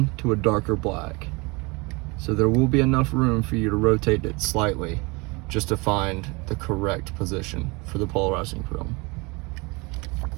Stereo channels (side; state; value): left; quieter; 26.9 dB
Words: to a darker black. So there will be enough room for you to rotate it slightly just to find the correct position for the polarizing film.